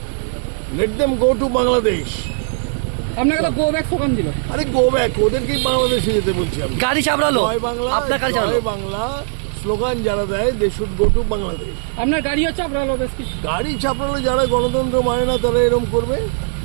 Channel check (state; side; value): silent; left; 55 dB below the other